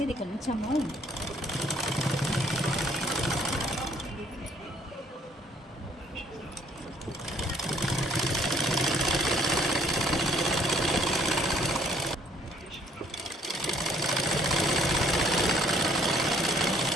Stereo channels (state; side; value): normal; both; correlation 0.63